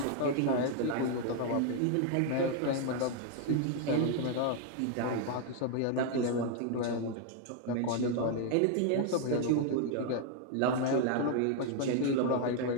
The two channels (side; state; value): both; different; correlation 0.00